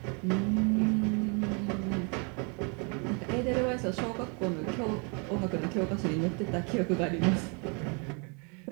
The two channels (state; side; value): quieter; left; 35.0 dB